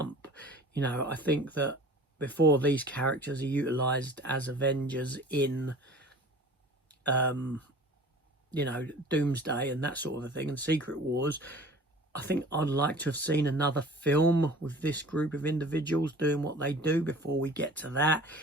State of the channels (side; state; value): both; normal; correlation 0.44